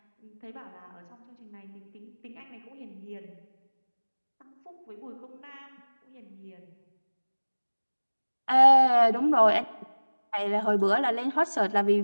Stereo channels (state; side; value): inverted; both; correlation -1.00